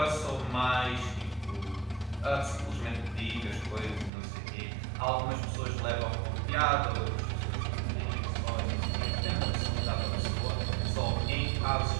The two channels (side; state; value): left; drops out; at 4.1 s